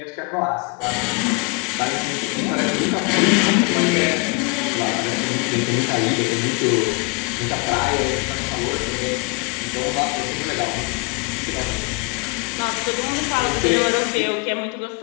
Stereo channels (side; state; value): right; quieter; 30.2 dB